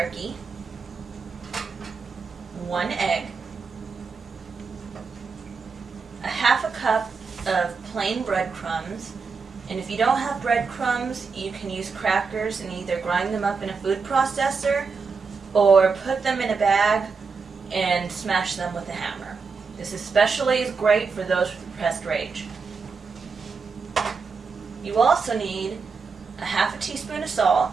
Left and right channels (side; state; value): left; quieter; 5.0 dB